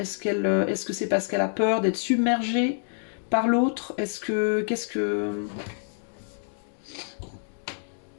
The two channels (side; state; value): right; silent; digital silence